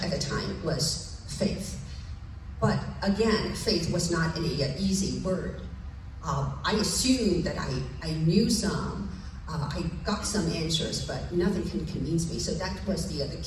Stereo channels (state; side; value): identical; both; correlation 1.00